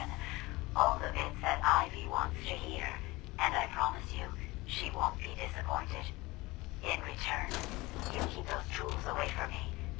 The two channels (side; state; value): right; quieter; 21.5 dB